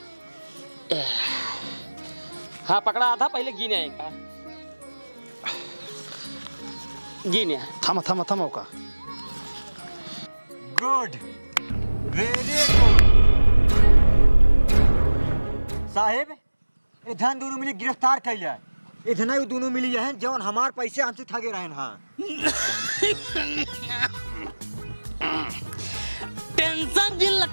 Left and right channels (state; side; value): inverted; both; correlation -1.00